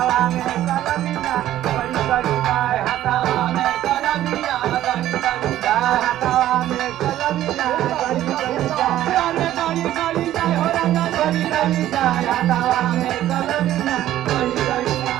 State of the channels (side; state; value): left; quieter; 13.1 dB